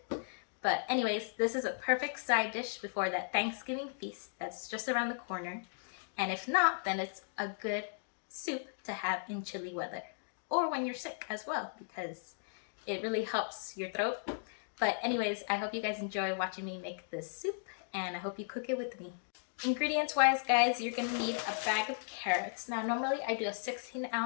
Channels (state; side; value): silent; right; digital silence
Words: But anyways, this is a perfect side dish before that Thanksgiving feast that's just around the corner. And if not, then it's a good soup to have in chilly weather or when you're sick as well, because it really helps your throat. But anyways, I hope you guys enjoy watching me make this soup, and I hope you cook it with me. Ingredients wise, guys, you're gonna need a bag of carrots. Now normally I do a 16